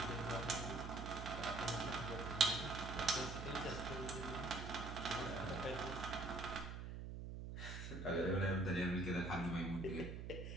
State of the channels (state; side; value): noise; right; hum, 6 dB below the sound